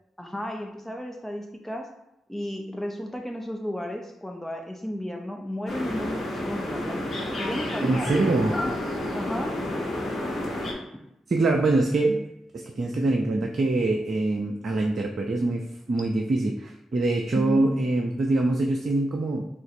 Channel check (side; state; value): both; normal; correlation 0.86